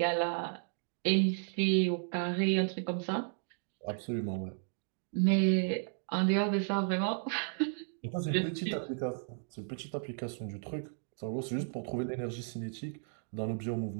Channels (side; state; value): left; silent; digital silence